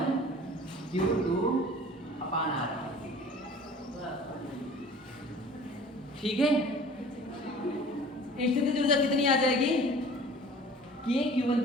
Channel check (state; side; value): normal; both; correlation 0.46